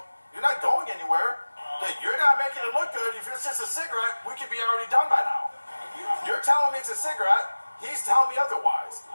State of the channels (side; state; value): both; inverted; correlation -1.00